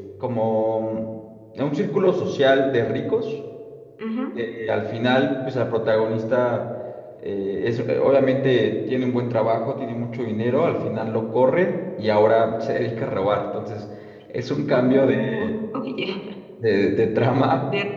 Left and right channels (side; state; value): both; identical; correlation 1.00